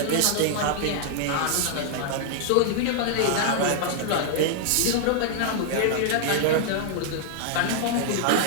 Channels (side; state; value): both; different; correlation -0.01